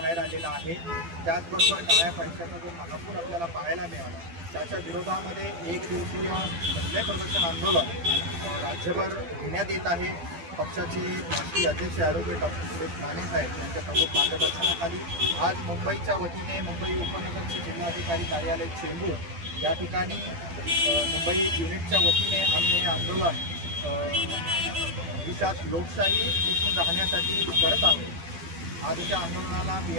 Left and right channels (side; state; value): left; late; 12 ms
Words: आलेला आहे, त्याचबरोबर काळ्या पैशाचा जो महापूर आपल्याला पाहायला मिळाला, त्याच्या विरोधामध्ये एक दिवसीय धरणे प्रदर्शन आंदोलन राज्यभर घेण्यात येत आहे। पक्षाचे राष्ट्रीय अध्यक्ष ॲडव्होकेट डॉक्टर सुरेश राणे साहेब यांच्या प्रमुख मार्गदर्शनाखाली आज मुंबईच्या वतीने मुंबई उपनगरचे जिल्हाधिकारी कार्यालय चेंबूर या ठिकाणी मुंबई युनिटच्या वतीने आम्ही हे आंदोलन देशात लोकशाही टिकून राहण्यासाठी करत आहोत। आजच्या आंदोलनाला